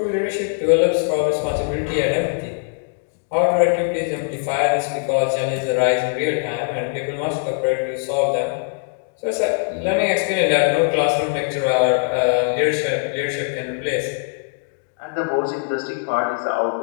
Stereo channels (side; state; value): right; silent; digital silence